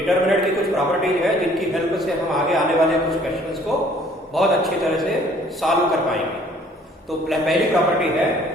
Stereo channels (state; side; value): normal; both; correlation 0.57